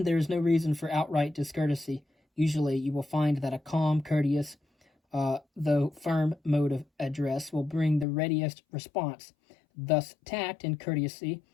there is no reason for outright discourtesy. Usually you will find that a calm, courteous, though firm mode of address will bring the readiest response. Thus, tact and courtesy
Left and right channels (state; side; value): drops out; right; at 8.1 s